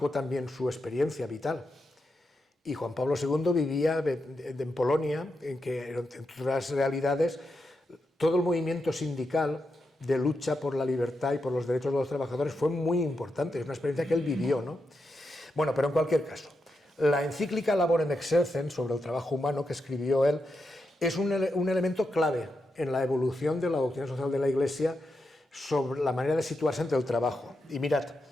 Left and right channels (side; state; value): both; normal; correlation 0.86